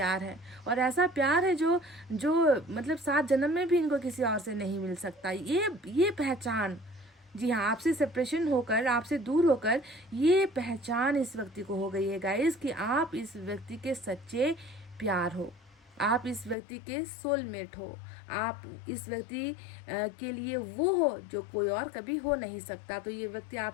है। और ऐसा प्यार है जो जो मतलब 7 जन्म में भी इनको किसी और से नहीं मिल सकता। ये पहचान, जी हाँ, आपसे सेपरेशन होकर, आपसे दूर होकर ये पहचान इस व्यक्ति को हो गई है गाइस कि आप इस व्यक्ति के सच्चे प्यार हो, आप इस व्यक्ति के सोलमेट हो, आप इस व्यक्ति के लिए वो हो जो कोई और कभी हो नहीं सकता। तो ये व्यक्ति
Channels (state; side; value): drops out; right; at 16.6 s